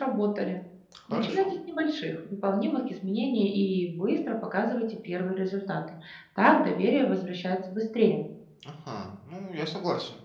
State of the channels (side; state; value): both; identical; correlation 1.00